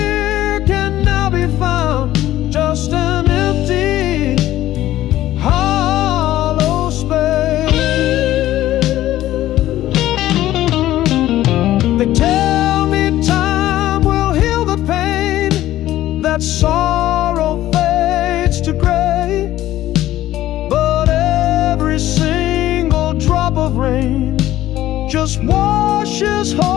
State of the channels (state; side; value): quieter; right; 14.3 dB